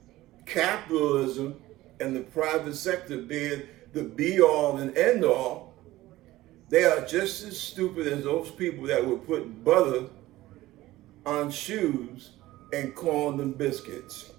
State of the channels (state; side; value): quieter; left; 16.8 dB